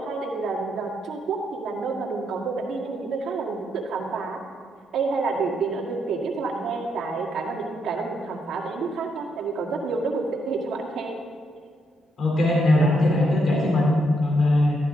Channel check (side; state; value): both; normal; correlation 0.77